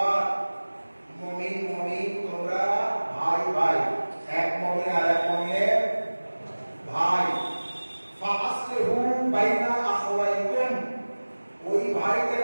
মুমিন তোমরা ভাই ভাই এক মুমিন আর এক মুমিনের ভাই ফাআসলিহু বাইনা আখওয়াইকুম ওই ভাইদের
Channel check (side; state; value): both; inverted; correlation -1.00